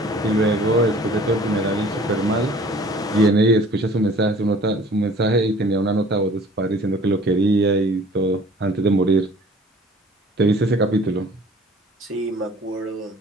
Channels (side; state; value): both; normal; correlation 0.50